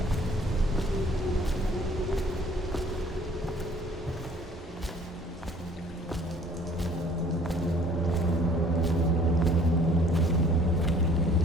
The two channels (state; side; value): normal; both; correlation 0.55